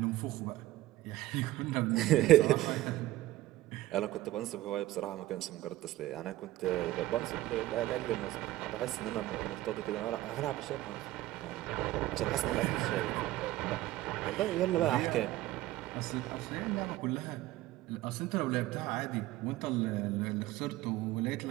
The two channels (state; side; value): quieter; left; 16.3 dB